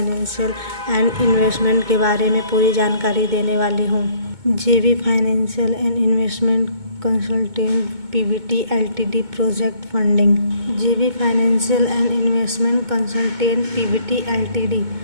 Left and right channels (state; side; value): late; left; 2.2 ms